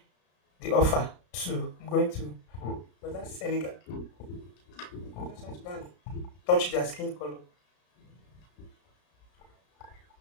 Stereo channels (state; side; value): late; right; 33 ms